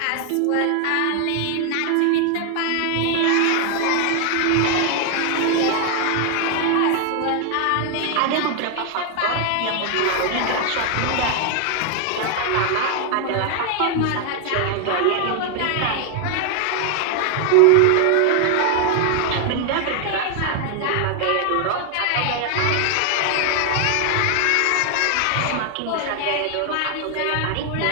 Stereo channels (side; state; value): both; different; correlation 0.00